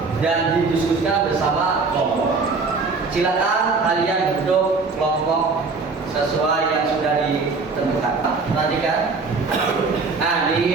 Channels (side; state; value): left; quieter; 4.3 dB